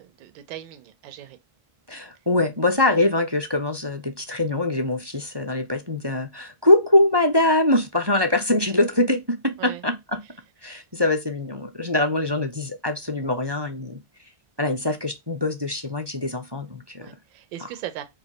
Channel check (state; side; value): late; left; 1.2 ms